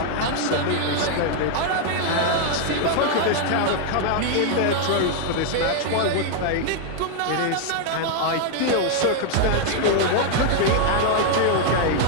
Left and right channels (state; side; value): different; both; correlation 0.00